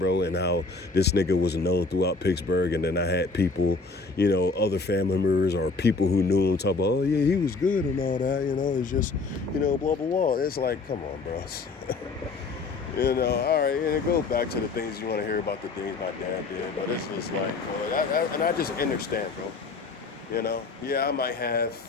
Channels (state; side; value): quieter; right; 4.0 dB